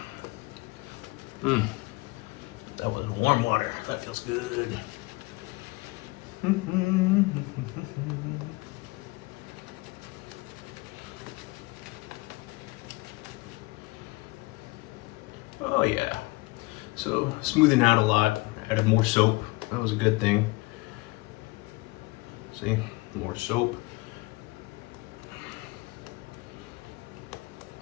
That was warm water, that feels good. Oh yeah, so smoothing out a lot, added more soap, that was a good thing. See, more soap.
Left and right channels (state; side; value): quieter; right; 23.4 dB